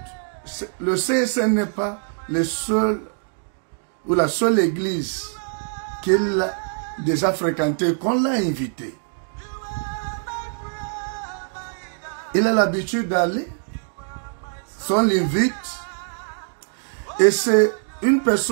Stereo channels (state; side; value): silent; left; 63 dB below the other